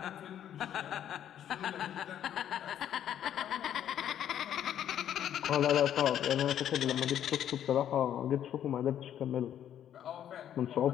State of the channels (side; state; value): right; quieter; 10.3 dB